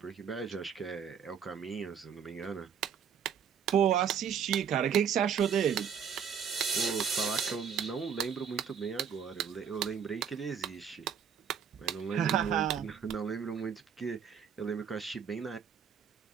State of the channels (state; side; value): quieter; left; 7.5 dB